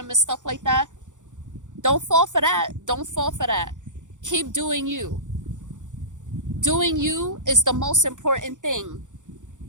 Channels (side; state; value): left; late; 0.86 ms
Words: and stuff like that. Don't fall for that. Don't fall for that. Keep doing you. Doing you is the most important thing.